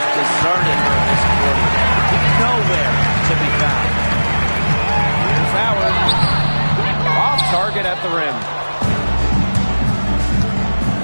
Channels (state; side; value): inverted; both; correlation -1.00